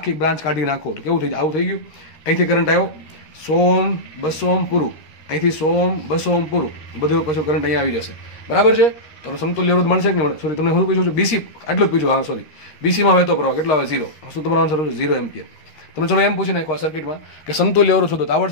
બ્રાન્ચ કાઢી નાખો તો કેવું થઈ જાય? આવું થઈ ગયું. અહીંથી કરંટ આવ્યો 100 200 પૂરું. અહીંથી 100 200 પૂરું. બધું પછી કરંટ અહીંયા આવી જશે. બરાબર છે? તો સમતુલ્ય અવરોધ મળશે કે નહીં? સોરી તમને શું પૂછું છું? બીસી આટલું જ પૂછું. હા સોરી, બીસીમાં વહેતો પ્રવાહ કેટલો આવે? 0. શું તમારો આન્સર છે? 0 એમ્પિયર. તમે ચલો એમ પૂછી નાખો આ સર્કિટમાં કે સમતુલ્ય અવરોધ શોધો તો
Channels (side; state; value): right; late; 13 ms